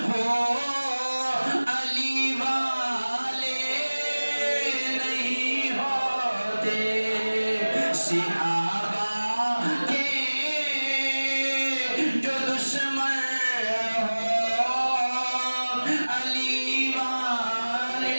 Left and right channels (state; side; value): inverted; both; correlation -1.00